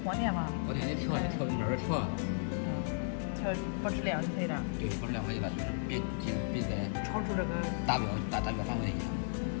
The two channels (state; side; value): silent; right; digital silence